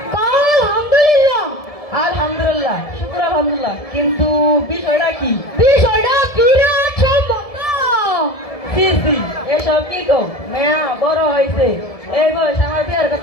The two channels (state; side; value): late; right; 1.7 ms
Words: আলহামদুলিল্লাহ আলহামদুলিল্লাহ শুকর আলহামদুলিল্লাহ কিন্তু বিষয়টা কি বিষয়টা বিরাট সম্পন্ন সি সি এসব কি গো মেয়া বড় হয়েছে এই বয়স আমার বিয়ার